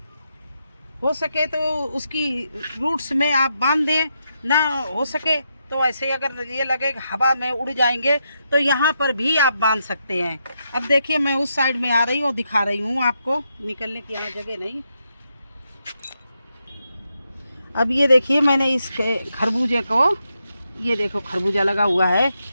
हो सके तो उसकी रूट्स में आप बांध दें, ना हो सके तो ऐसे अगर ये लगे हवा में उड़ जाएंगे तो यहाँ पर भी आप बांध सकते हैं। अब देखिए मैं उस साइड में आ रही हूँ, दिखा रही हूँ आपको, निकलने की यहाँ जगह नहीं। अब ये देखिए मैंने इस खरबूजे को, ये देखो खरबूजा लगा हुआ है,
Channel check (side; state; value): both; inverted; correlation -0.83